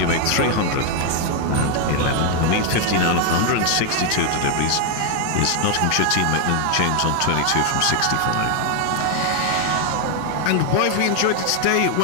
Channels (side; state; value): both; different; correlation 0.00